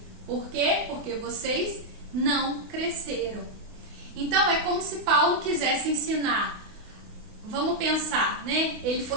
Por quê? Porque vocês não cresceram. Então é como se Paulo quisesse ensinar. Vamos pensar, né? Ele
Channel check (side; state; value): left; late; 28 ms